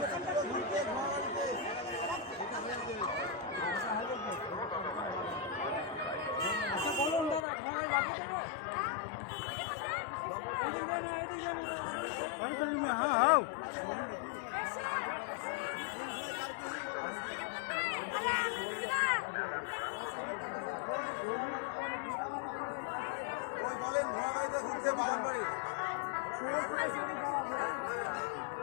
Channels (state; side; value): drops out; right; at 7.5 s